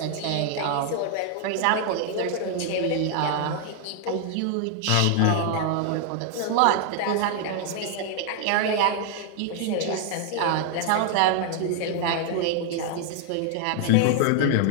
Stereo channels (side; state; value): both; different; correlation 0.00